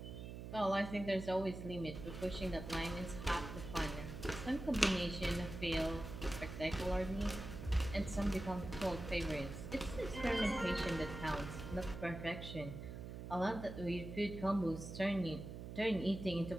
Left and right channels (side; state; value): right; noise; hum, 8 dB below the sound